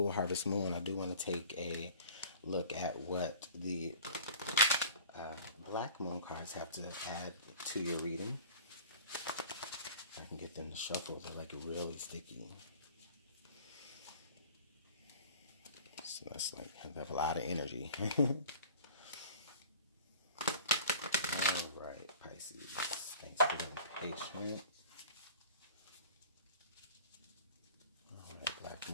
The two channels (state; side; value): inverted; both; correlation -0.44